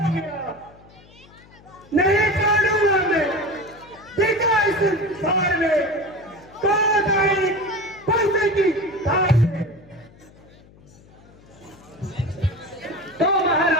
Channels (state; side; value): noise; left; hum, 25 dB below the sound